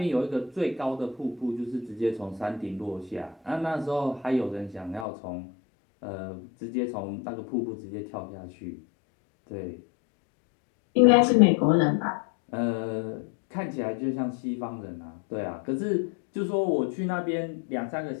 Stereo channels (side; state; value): right; drops out; at 5.1 s